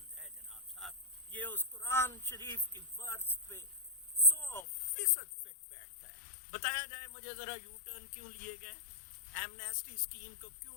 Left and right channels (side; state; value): right; drops out; at 4.7 s